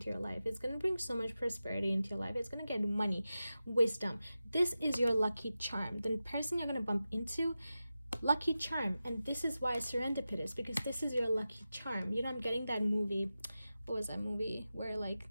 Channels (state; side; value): inverted; both; correlation -0.93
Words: your life. It's going to bring so much prosperity into your life. It's going to get money, wisdom. This is your lucky charm. The person you're going to bump into, lucky charm. And this is why Serendipitous, because this is your lucky charm. You know, I'm getting that movie. What was that movie where like